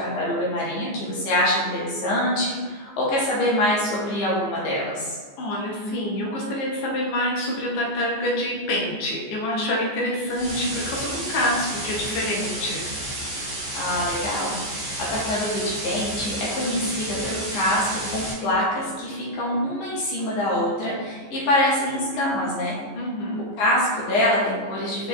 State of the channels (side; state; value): right; late; 14 ms